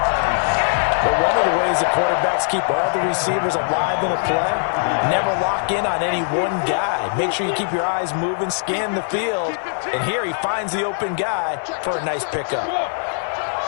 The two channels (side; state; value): right; silent; digital silence